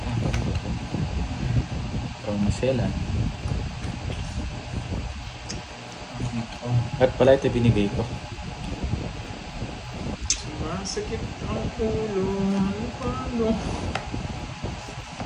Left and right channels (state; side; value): identical; both; correlation 1.00